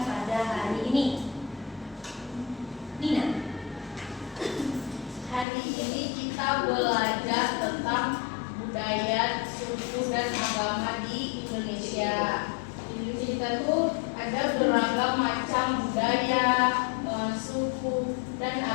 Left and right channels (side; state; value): right; drops out; at 5.5 s